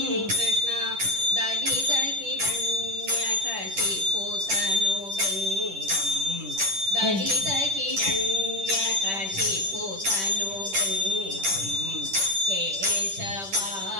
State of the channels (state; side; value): late; left; 10 ms